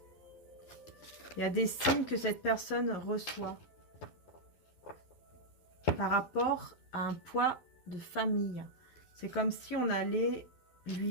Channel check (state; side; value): late; right; 11 ms